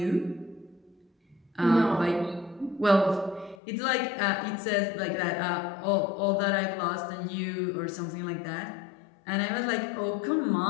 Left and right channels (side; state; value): right; drops out; at 3.6 s